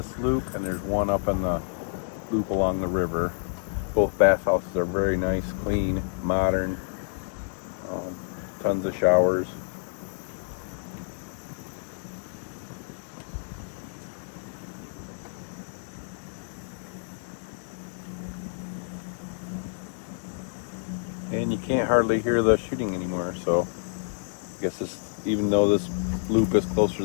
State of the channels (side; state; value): right; silent; 57 dB below the other